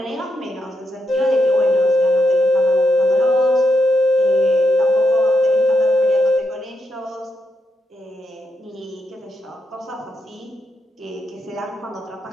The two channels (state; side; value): normal; both; correlation 0.82